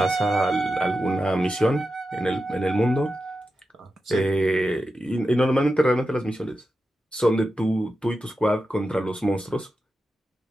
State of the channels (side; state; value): both; normal; correlation 0.90